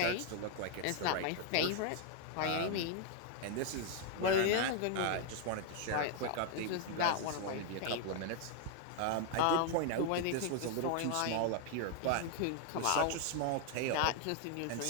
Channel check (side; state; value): both; different; correlation 0.00